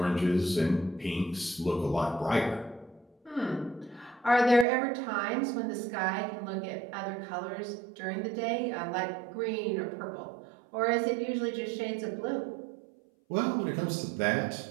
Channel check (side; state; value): left; drops out; at 4.7 s